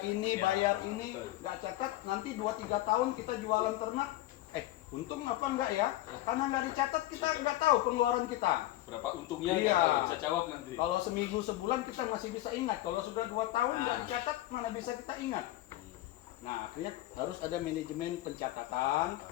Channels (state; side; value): quieter; right; 16.0 dB